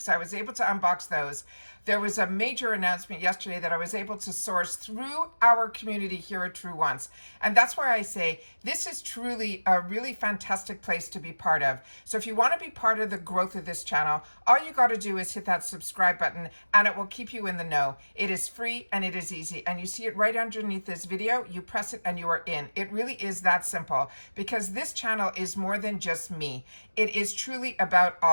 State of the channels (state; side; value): inverted; both; correlation -1.00